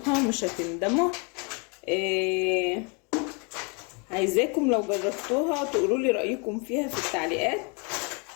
مش هتندموا. عايزاكم لو جربتوها تقولوا لي رايكم فيها في التعليقات،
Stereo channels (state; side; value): quieter; right; 33.9 dB